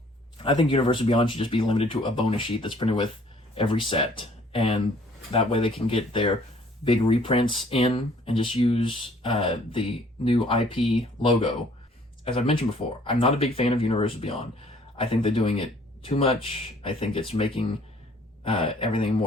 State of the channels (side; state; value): both; normal; correlation 0.58